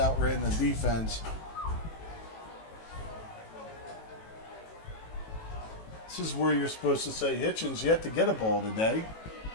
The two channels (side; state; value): right; late; 18 ms